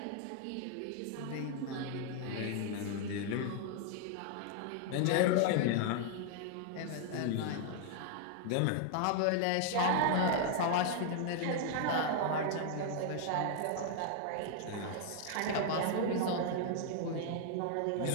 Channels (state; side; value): different; both; correlation 0.00